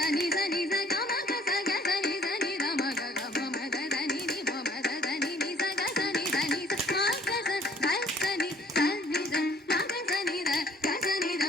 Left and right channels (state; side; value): normal; both; correlation 0.58